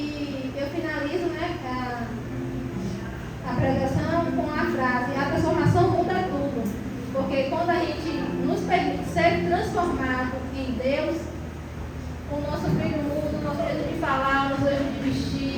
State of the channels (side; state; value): both; identical; correlation 1.00